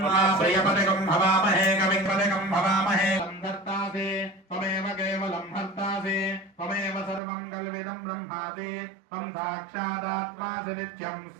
प्रियपतिकं भवामहे कविपतिकं भवामहे। संधर्तासे त्वमेव केवलं हर्तासे त्वमेव सर्वं कल्विदं ब्रह्मासि त्वं साक्षादात्मासि नित्यं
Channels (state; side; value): drops out; left; at 7.2 s